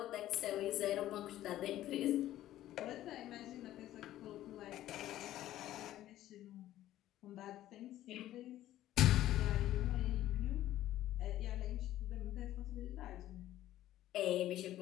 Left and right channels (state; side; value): quieter; right; 13.7 dB